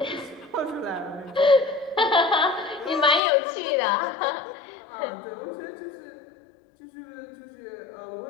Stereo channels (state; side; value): drops out; right; at 3.2 s